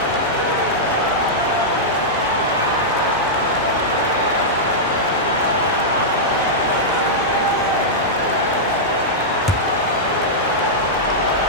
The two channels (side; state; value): right; noise; hum, 25 dB below the sound